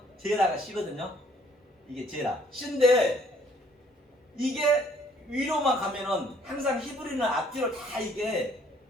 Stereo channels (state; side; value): normal; both; correlation 0.61